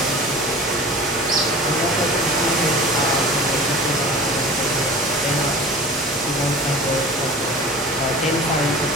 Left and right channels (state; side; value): normal; both; correlation 0.39